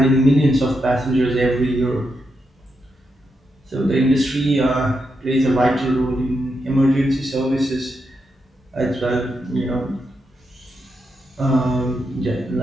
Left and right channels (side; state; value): both; normal; correlation 0.84